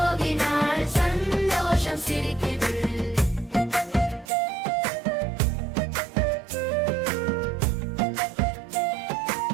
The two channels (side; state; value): left; drops out; at 4.3 s